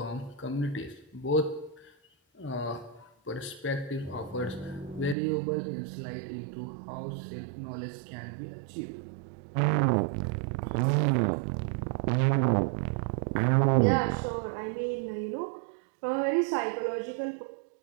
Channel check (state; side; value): drops out; left; at 5.2 s